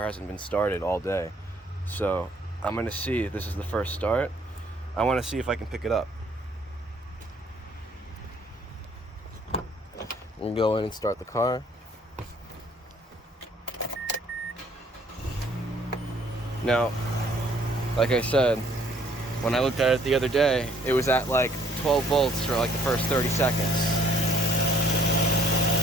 hasn't been started all day, so I'm gonna see. This is the first start. I want to see if I can pick it up. We're gonna go in and start the car. Now, like I said, when I looked at it the other day, it was at like 12 volts for like the first 30 seconds.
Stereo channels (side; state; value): both; normal; correlation 0.62